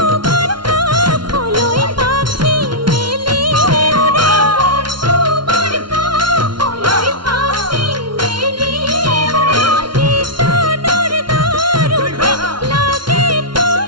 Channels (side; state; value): left; late; 0.72 ms